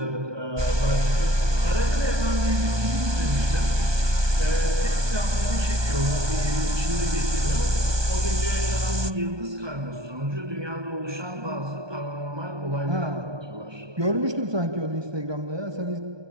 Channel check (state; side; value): late; left; 1.2 ms